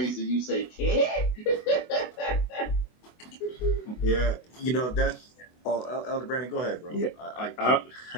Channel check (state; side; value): late; right; 24 ms